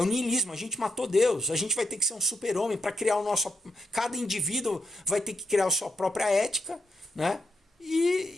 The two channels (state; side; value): normal; both; correlation 0.81